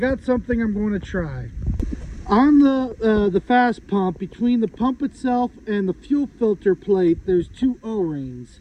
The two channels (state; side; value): identical; both; correlation 1.00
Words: something I'm going to try. On the fast pump, between the pump itself and the fuel filter plate, there's two O-rings.